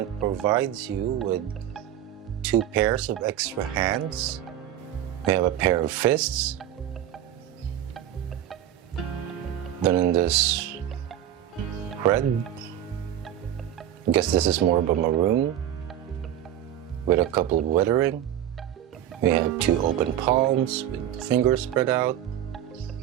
provides you with 2 pairs of extra hands. We have a pair of fists, done in this red. I guess this is more of a maroon, with a couple of weathering. We have 2 open palms with fingers spread out.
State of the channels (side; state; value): left; quieter; 11.2 dB